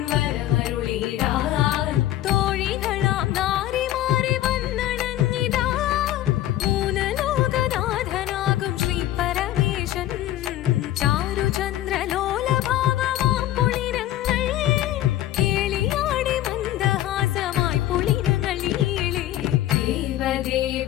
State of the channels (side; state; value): right; quieter; 13.6 dB